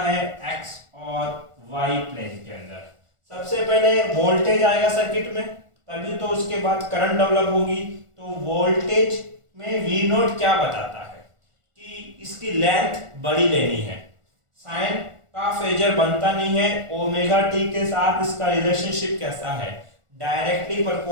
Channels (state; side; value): late; left; 1.4 ms